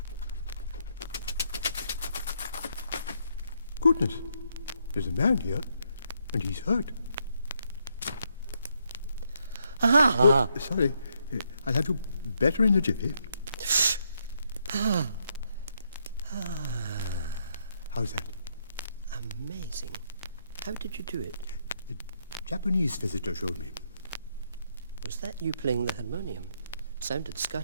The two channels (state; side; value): inverted; both; correlation -0.76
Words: Goodness, there's a man here, and he's hurt. Sorry, I'll have you better in a jiffy. How's that? Amazing. How did you do it? The Japanese visitor showed me. Was that you playing the harmonium? Sounded